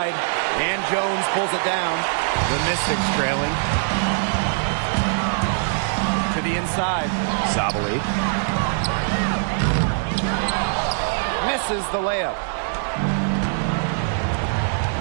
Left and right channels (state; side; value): silent; left; digital silence